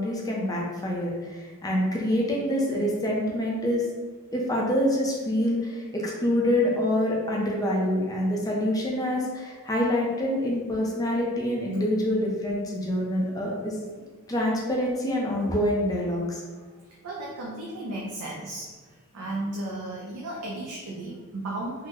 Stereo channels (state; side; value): normal; both; correlation 0.53